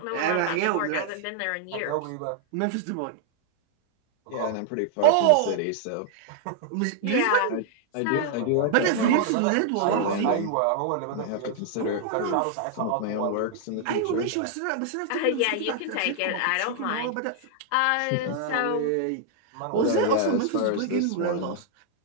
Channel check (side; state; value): both; different; correlation -0.01